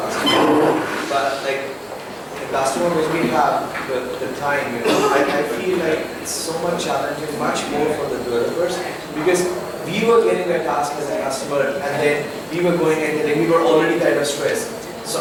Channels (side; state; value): both; identical; correlation 1.00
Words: but like the customer when we have the time, I feel like it's so much challenging, much more for the developers, because we were getting a task as a customer and then we were going and then we were already kind of stressed. So